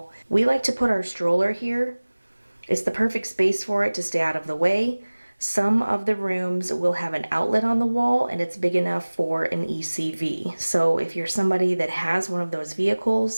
We like to put our stroller here. It's the perfect space for it to stay out of the way. Some of the rooms will have an outlet on the wall and it's big enough for an ECV. So if you're somebody that has one of those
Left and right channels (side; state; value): both; inverted; correlation -1.00